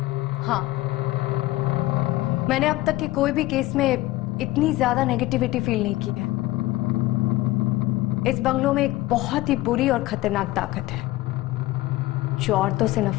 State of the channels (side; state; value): right; quieter; 17.8 dB